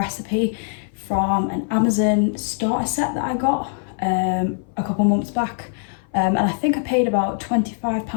from an Amazon starter set that I got a couple months back, and I think I paid about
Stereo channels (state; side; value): silent; right; 58 dB below the other